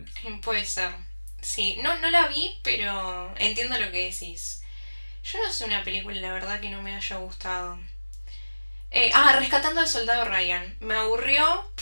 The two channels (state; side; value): inverted; both; correlation -1.00